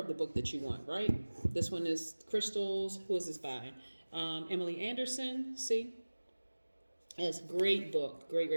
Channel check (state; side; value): inverted; both; correlation -1.00